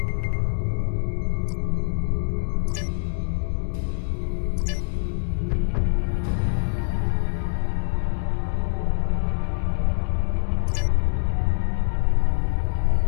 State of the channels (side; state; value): right; silent; digital silence